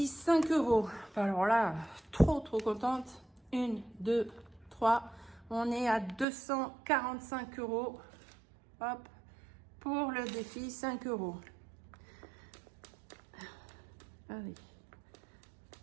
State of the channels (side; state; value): left; drops out; at 6.2 s